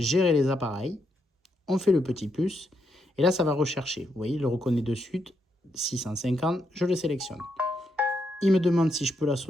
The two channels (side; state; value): both; normal; correlation 0.80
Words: les appareils. On fait le petit plus et là, ça va rechercher. Vous voyez, il le reconnaît de suite. 650, je le sélectionne. Il me demande si je peux